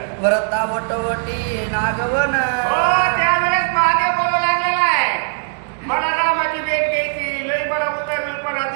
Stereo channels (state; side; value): silent; left; digital silence